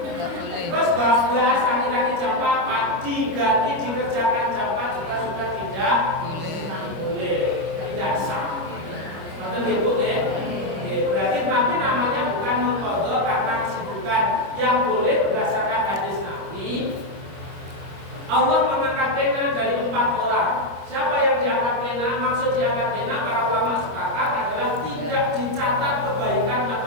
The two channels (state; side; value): late; left; 25 ms